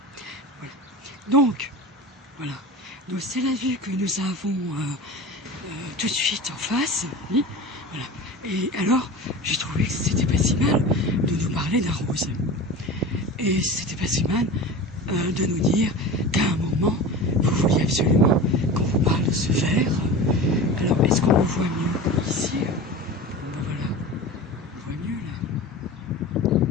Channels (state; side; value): normal; both; correlation 0.32